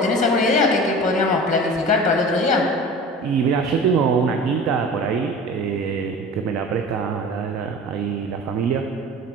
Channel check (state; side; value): normal; both; correlation 0.37